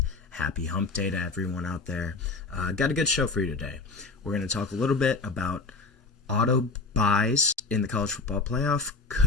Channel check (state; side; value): quieter; right; 3.9 dB